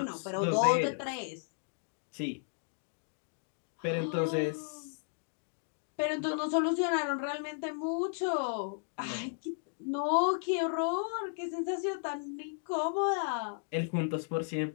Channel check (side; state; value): right; silent; digital silence